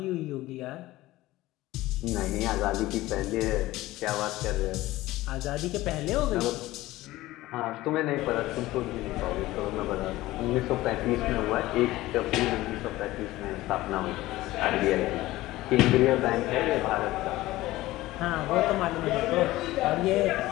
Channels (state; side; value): quieter; right; 17.5 dB